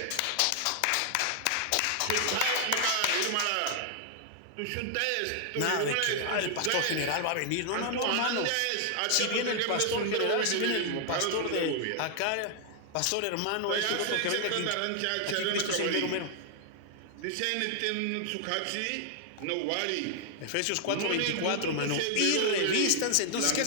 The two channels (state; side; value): different; both; correlation 0.00